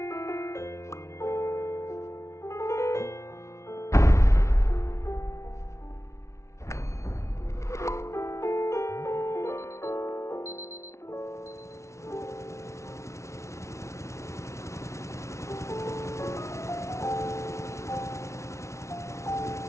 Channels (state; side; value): late; right; 0.14 ms